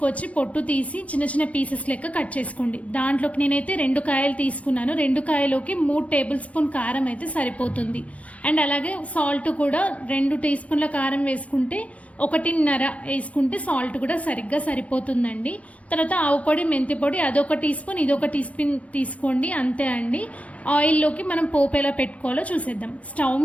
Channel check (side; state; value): right; late; 0.065 ms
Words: పొట్టు తీసి చిన్న చిన్న పీసెస్ లెక్క కట్ చేసుకోండి. దాంట్లోకి నేనైతే 2 కాయలు తీసుకున్నాను. 2 కాయలోకి 3 టేబుల్ స్పూన్ కారం అయితే సరిపోతుంది. అండ్ అలాగే సాల్ట్ కూడా 2 టీ స్పూన్ల కారం వేసుకుంటే 1.5 వేసుకుంటే సాల్ట్ కూడా సరిగ్గా సరిపోతుందండి. తర్వాత ఆవు పొడి, మెంతి పొడి అదొక టీ స్పూన్, ఇదొక టీ స్పూన్ తీసుకోండి, అంతే అండి. ఆయిల్లోకి మనం పోపు ఎలా పెట్టుకోవాలో చూసేద్దాం. స్టవ్